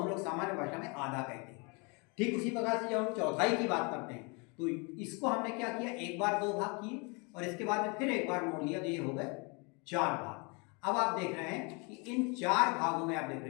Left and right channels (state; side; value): quieter; right; 31.5 dB